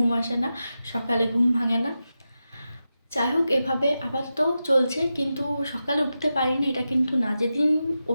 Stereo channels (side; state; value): both; inverted; correlation -0.91